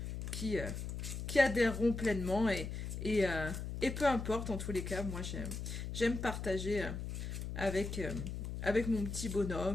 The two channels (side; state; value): left; noise; hum, 5 dB below the sound